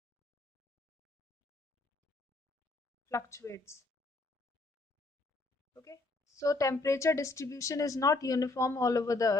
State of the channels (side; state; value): right; quieter; 3.2 dB